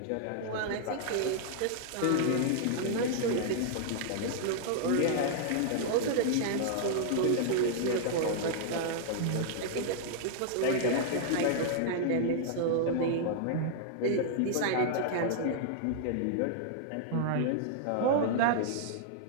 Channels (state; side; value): different; both; correlation -0.01